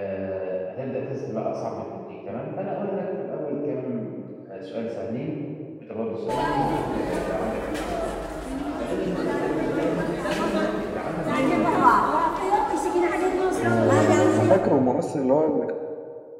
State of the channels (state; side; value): identical; both; correlation 1.00